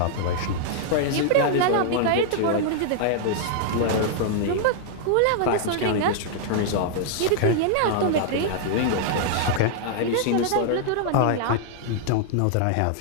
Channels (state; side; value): different; both; correlation -0.01